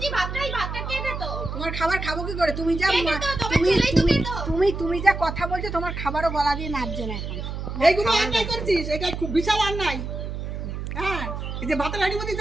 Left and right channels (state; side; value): noise; right; hum, 6 dB below the sound